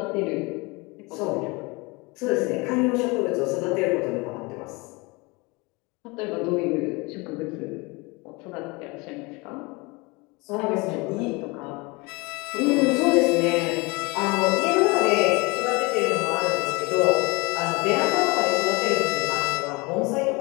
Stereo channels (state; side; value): quieter; right; 26.0 dB